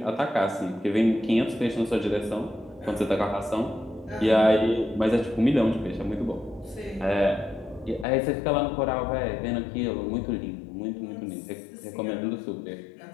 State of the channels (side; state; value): right; drops out; at 8.1 s